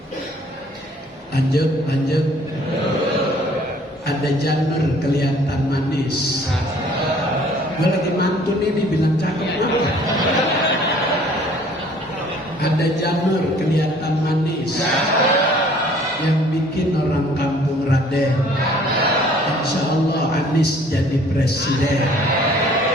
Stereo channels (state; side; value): normal; both; correlation 0.56